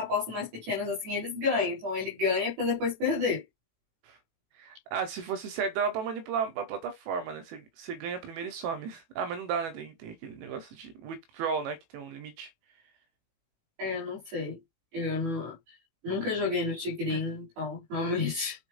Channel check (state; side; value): late; left; 18 ms